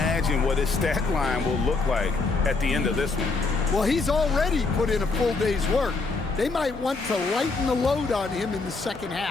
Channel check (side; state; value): right; quieter; 3.9 dB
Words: what his stat line will look like at the end of this one. Well, he's already put in a full day's work. They might want to lighten the load on him in the second